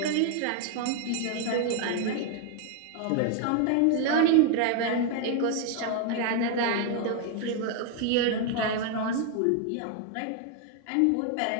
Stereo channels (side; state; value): both; different; correlation 0.00